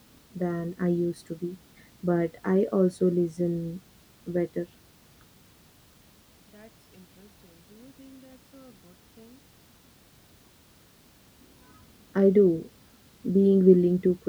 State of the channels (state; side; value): identical; both; correlation 1.00